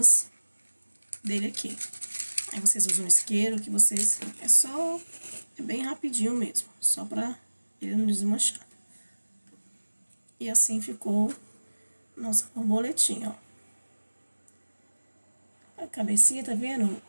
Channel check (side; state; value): both; inverted; correlation -1.00